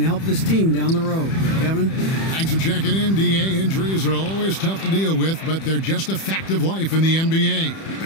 help this team down the road. Kevin? Thanks for checking in, DA. Injuries are always tough to deal with, but they're just a fact of life in the NBA.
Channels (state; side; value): late; right; 31 ms